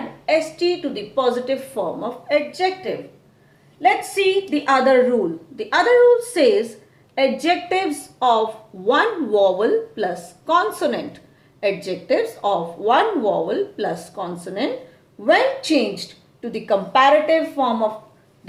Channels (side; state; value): both; identical; correlation 1.00